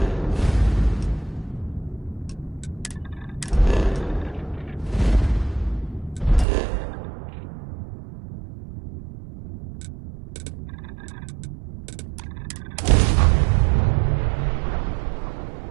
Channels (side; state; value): left; drops out; at 6.5 s